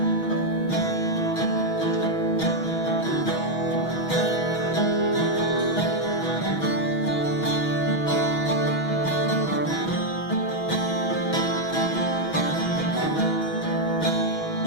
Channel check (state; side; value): late; right; 6.2 ms